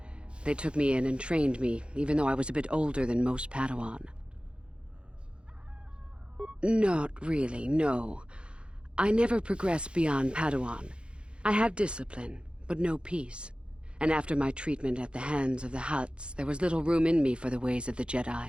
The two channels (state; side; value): late; left; 0.056 ms